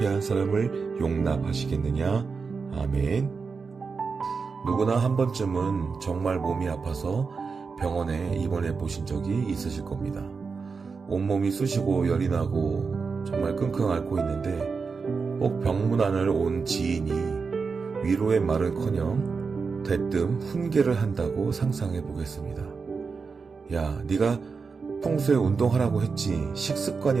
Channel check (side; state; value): left; quieter; 5.0 dB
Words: 사람을 용납하시겠느냐. 아멘. 누구나 한 번쯤은 정말 몸이 아파서 병원에 입원해 보신 적이 있으실 겁니다. 온몸이 쑤시고 열이 나고 정말 끙끙 앓고 있는데 꼭 병문안을 온 지인이 위로의 말은커녕 대뜸 훈계를 한다고 상상해 보겠습니다. 야, 네가 평소에 운동하라고 했지. 식습관이